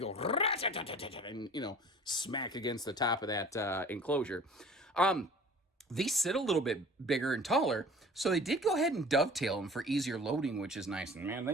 go and, smack against the top of that enclosure. These sit a little bit bigger and taller, so they did go ahead and dovetail them for easier loading, which is nice. And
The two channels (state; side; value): normal; both; correlation 0.45